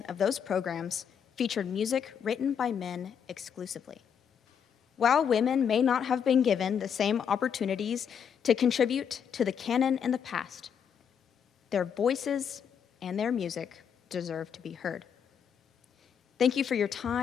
of those programs featured music written by men exclusively. While women may not have been given the same opportunities to contribute to the canon in the past, their voices and their music deserve to be heard. Thank you for your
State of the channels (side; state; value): right; quieter; 7.6 dB